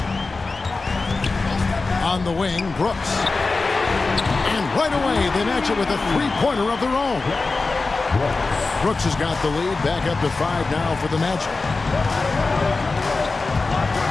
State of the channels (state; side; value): quieter; right; 3.8 dB